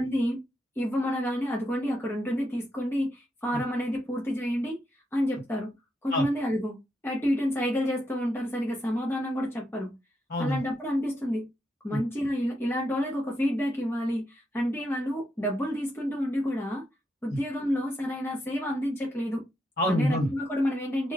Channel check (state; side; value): normal; both; correlation 0.82